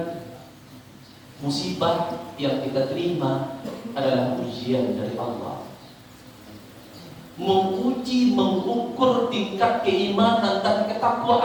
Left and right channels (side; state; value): both; identical; correlation 1.00